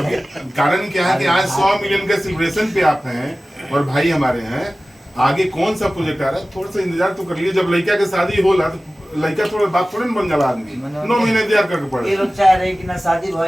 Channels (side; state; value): both; normal; correlation 0.97